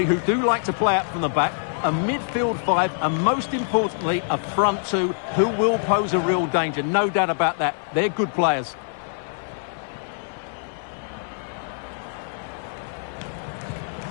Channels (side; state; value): right; silent; 62 dB below the other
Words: who do like to play out from the back, a midfield five, and most importantly, a front two who will pose a real danger. No doubt about that. They're good players.